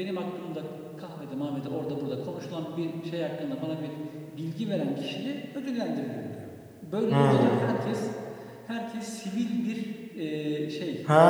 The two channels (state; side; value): identical; both; correlation 1.00